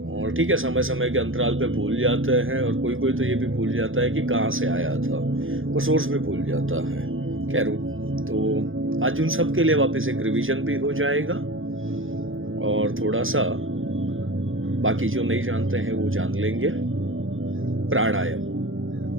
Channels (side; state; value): left; late; 0.59 ms